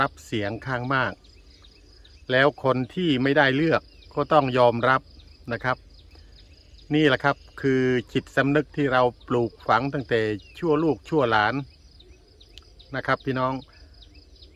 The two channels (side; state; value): both; identical; correlation 1.00